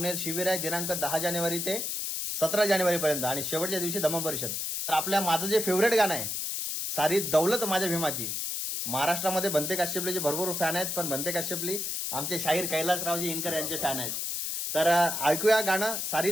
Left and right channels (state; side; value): noise; left; hiss, 2 dB below the sound